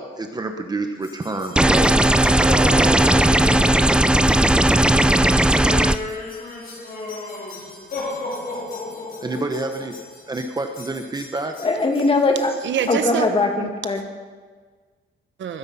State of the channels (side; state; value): both; normal; correlation 0.71